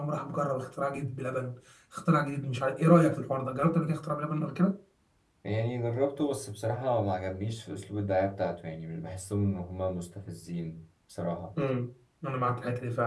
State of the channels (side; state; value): both; identical; correlation 1.00